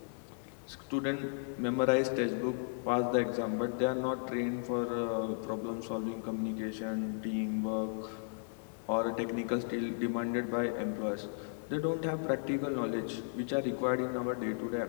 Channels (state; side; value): silent; right; digital silence